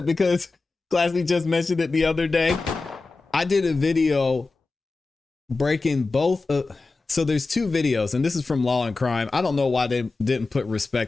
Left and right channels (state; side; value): quieter; right; 3.7 dB